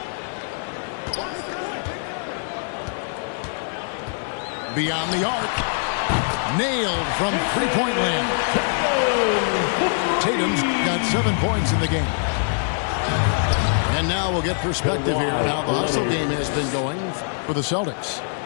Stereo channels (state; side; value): silent; right; digital silence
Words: Beyond the arc. Nailed from three-point land. Tatum's got 7 points in the game. And now we'll get perspective here on how the hustle game has been going for the Celtics.